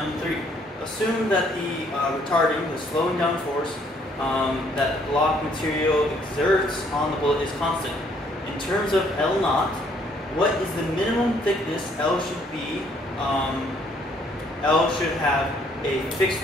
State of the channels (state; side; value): normal; both; correlation 0.65